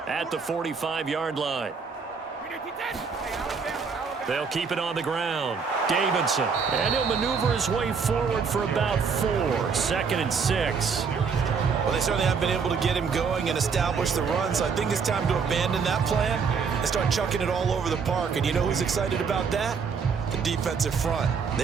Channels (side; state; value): left; quieter; 5.7 dB